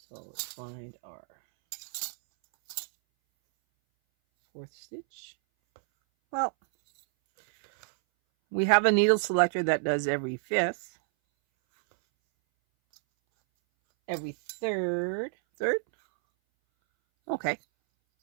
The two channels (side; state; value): left; silent; 59 dB below the other